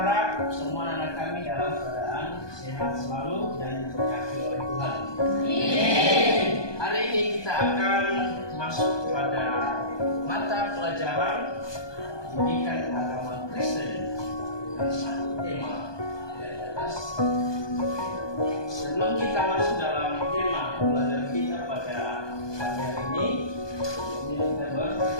semua anak kami dalam keadaan sehat selalu dan diberkati oleh Tuhan. Amin. Hari ini kita akan masuk pada mata pelajaran pendidikan agama Kristen dengan satu tema dari atas. Sebelum kita masuk dalam tema pelajaran kita pada pagi hari ini kita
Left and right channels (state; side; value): late; right; 1.2 ms